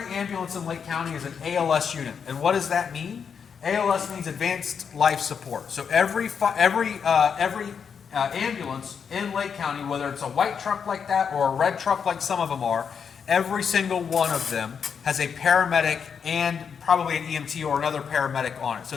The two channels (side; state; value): right; quieter; 6.8 dB